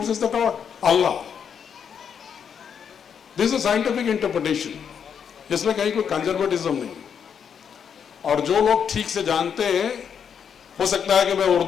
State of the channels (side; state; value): right; quieter; 7.5 dB